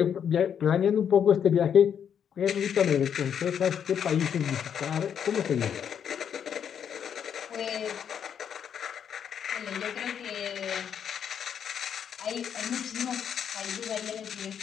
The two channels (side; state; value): right; quieter; 8.2 dB